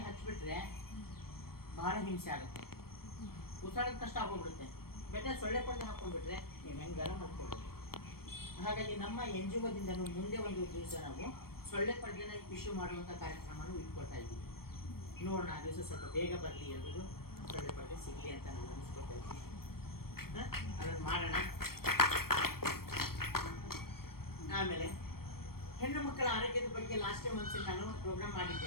ಹಚ್ಬಿಟ್ರೆ ಬಹಳ ಹಿಂಸೆ ಆಗುತ್ತೆ, ಉಸಿರಾಟದ ಕಷ್ಟ ಆಗೋಗ್ಬಿಡುತ್ತೆ. ಬೆಟ್ಟೆ ಸೊಳ್ಳೆ ಪಡೆದು ಹಾಕೊಂಡ್ಬಿಟ್ರೆ ನೀವು ಹೆಂಗಾರ ಮಾಡ್ಕೊಳ್ಬೇಕು. ಹಾಗಾಗಿ ನಮ್ಮ NGOದಿಂದ ಮುಂದೆ ಒಂದು ದಿವಸ ನಾವು ಸೊಳ್ಳೆ ಪಡೆನ ಇಶ್ಯೂ ಮಾಡುವಂಥ ಕಾರ್ಯಕ್ರಮನೂ ಇಟ್ಕೊಳ್ತಾ ಇದ್ದೀವಿ. ನೋಡೋಣ, ಆ ದಿವಸ ಸ್ವಲ್ಪ ಬೇಗ ಬರಲಿ, ಎಲ್ರಿಗೂ ಸೊಳ್ಳೆ ಪಡೆದೆ ಸಿಗಲಿ ಅಂತ ನಾನು ಅನಿಸ್ಕೊಳ್ತಾ ಇದ್ದೀನಿ. ಅದನ್ನು ಮಾಡೋಣ. ಆಮೇಲೆ ಹೆಣ್ಣು ಮಕ್ಕಳ ಆರೋಗ್ಯದ ಬಗ್ಗೆ ಲಾಸ್ಟ್ ಟೈಮ್ ಒಂದ್ಸಲ ನಾನು ಪ್ರೋಗ್ರಾಮ್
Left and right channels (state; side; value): late; right; 0.94 ms